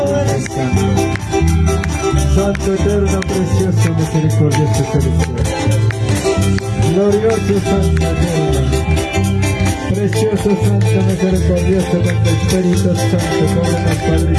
eres tú. Santo, eterno, precioso, misericordioso, celestial. Glorioso, santo, eterno. Precioso, santo, misericordioso, con tu Espíritu Santo, cóbrenos, Padre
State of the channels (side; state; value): both; identical; correlation 1.00